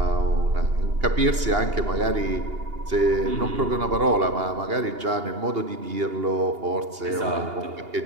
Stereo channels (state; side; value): late; left; 2.8 ms